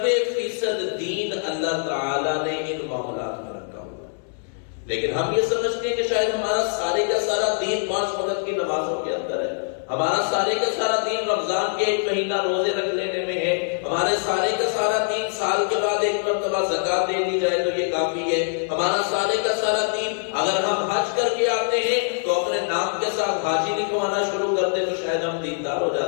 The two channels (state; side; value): silent; right; digital silence